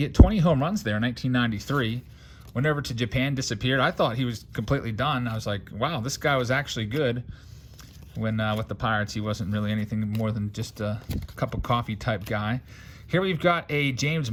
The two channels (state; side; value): identical; both; correlation 1.00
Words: hit 20 home runs there in 1993. Went over to Japan, disappeared. I thought he was completely done. I was like, wow, this guy was actually good. When with the Pirates, he wasn't really anything more than just a cup of coffee type guy. Here we've got a James